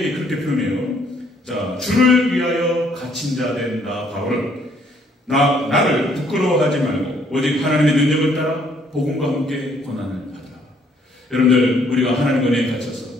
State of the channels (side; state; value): both; normal; correlation 0.66